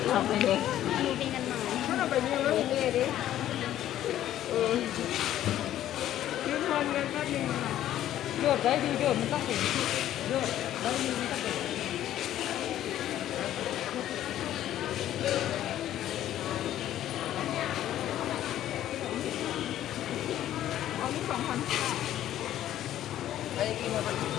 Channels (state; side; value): quieter; right; 12.4 dB